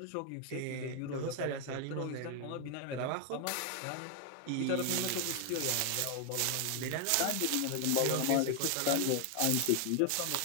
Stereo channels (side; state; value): both; different; correlation 0.00